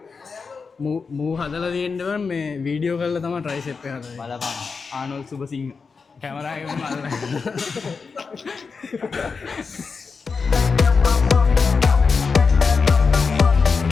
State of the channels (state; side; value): quieter; right; 5.0 dB